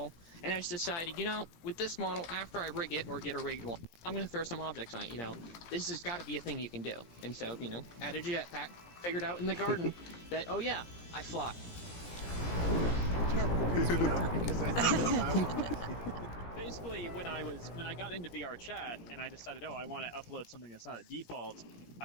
and I just decided, with this model, after I rig it or get a rigged one, I'm going to throw some objects on it. This has got to be a thing you can do. And so, added a jetpack, figured out in the garden that, oh yeah, I fly. Basically, when I got into VR chat and I decided, I want to upload something that's not a default,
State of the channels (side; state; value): right; late; 17 ms